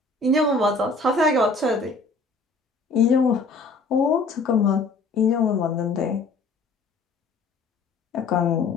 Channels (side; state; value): right; quieter; 3.7 dB